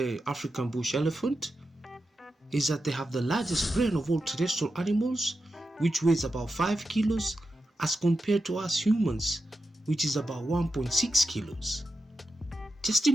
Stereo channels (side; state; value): both; normal; correlation 0.89